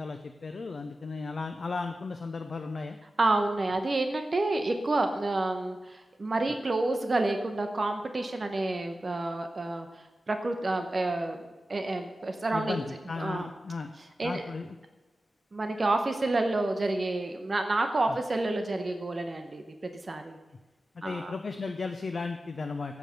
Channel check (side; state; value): both; normal; correlation 0.94